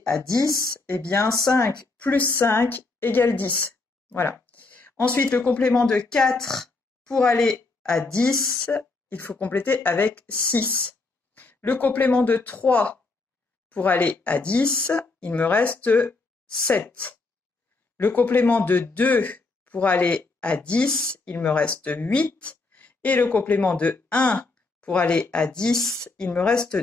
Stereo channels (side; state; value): right; quieter; 3.6 dB